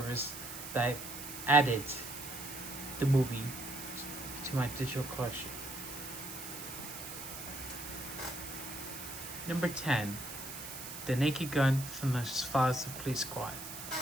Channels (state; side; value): noise; right; hiss, 9 dB below the sound